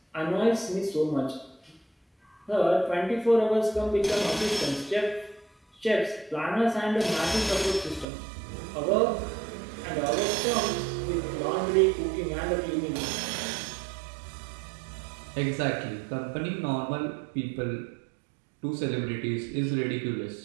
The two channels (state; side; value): drops out; left; at 8.1 s